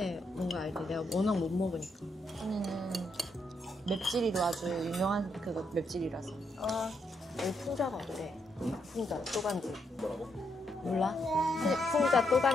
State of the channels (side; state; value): both; normal; correlation 0.78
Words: 뭔가 알지? 내가 워낙 못 먹으니까. 언니는 맵찔이로 아주 유명한 그거 맵찔이라서. 여기 풍자가 어때? 풍자 또간집. 뭐라고? 몰라? 풍자